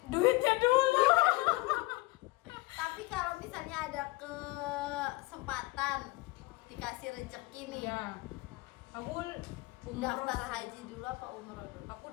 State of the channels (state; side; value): quieter; right; 22.7 dB